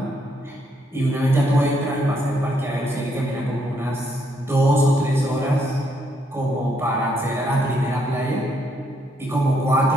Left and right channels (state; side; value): normal; both; correlation 0.73